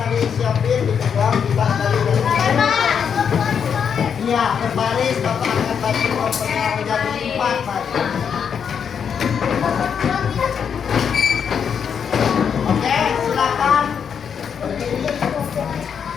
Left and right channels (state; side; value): quieter; right; 7.3 dB